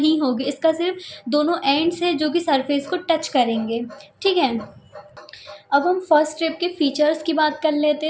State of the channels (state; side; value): identical; both; correlation 1.00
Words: होगी, इसका सिर्फ दोनों एंड्स है जो कि सरफेस को टच करेंगे। ठीक है, अब हम फर्स्ट रिब के फीचर्स की बात कर लेते